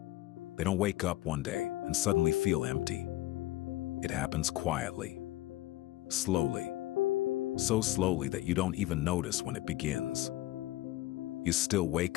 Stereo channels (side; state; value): right; quieter; 17.0 dB